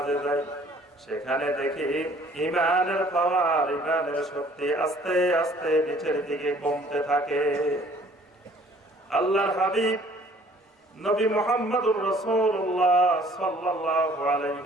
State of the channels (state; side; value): normal; both; correlation 0.56